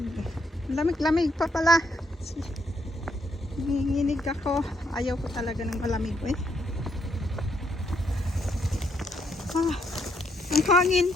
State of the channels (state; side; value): normal; both; correlation 0.74